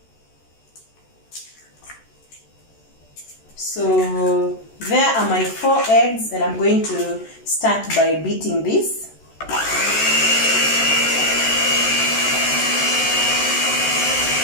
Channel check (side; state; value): right; late; 13 ms